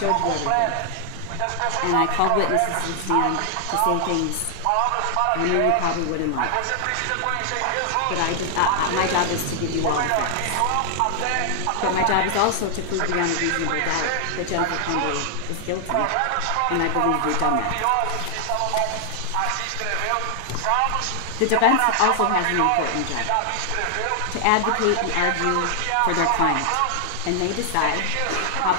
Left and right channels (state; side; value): different; both; correlation 0.00